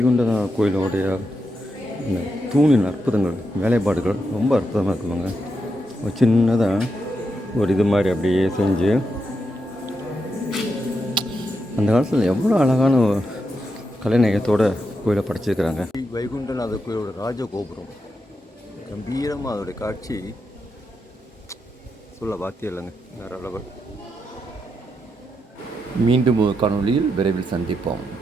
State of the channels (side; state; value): both; normal; correlation 0.84